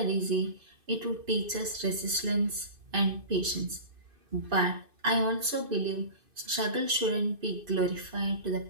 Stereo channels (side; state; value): left; late; 2.5 ms